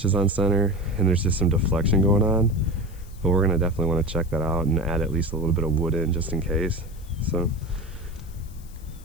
on center, and there's just some deflection going on, but we're gonna definitely want to check that out and add at least a little bit of wood in just in case. So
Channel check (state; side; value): noise; left; hiss, 25 dB below the sound